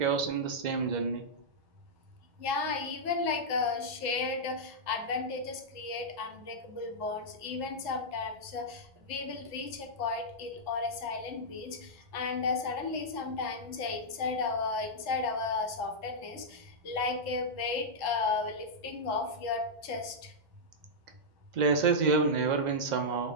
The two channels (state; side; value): late; left; 1.1 ms